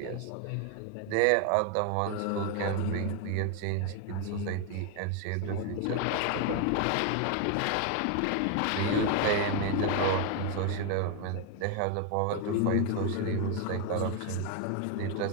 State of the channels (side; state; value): both; different; correlation 0.01